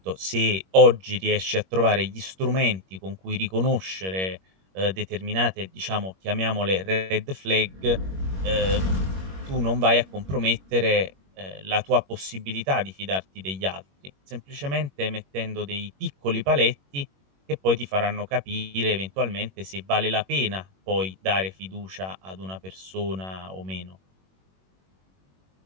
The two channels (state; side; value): late; left; 21 ms